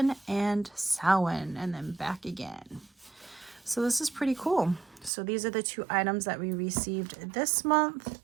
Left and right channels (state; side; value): drops out; left; at 5.1 s